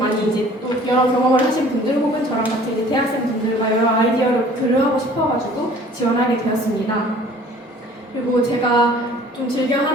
이제 또 여러 경험을 하신 분들 혹은 저랑 같이 이제 대학생 분들과 여러 아이디어를 교류하고 싶어가지고 지원하게 되었습니다. 그리고 제가 좀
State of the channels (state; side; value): normal; both; correlation 0.51